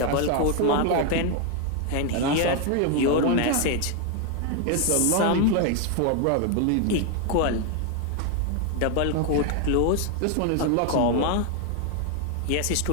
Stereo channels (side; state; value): both; different; correlation 0.01